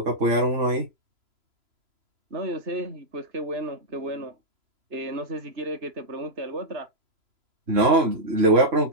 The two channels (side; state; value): left; late; 3.0 ms